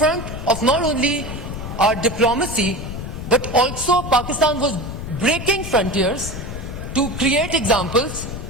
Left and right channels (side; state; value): left; noise; rumble, 8 dB below the sound